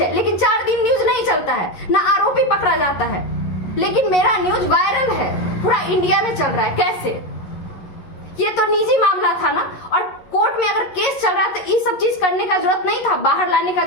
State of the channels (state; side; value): late; right; 11 ms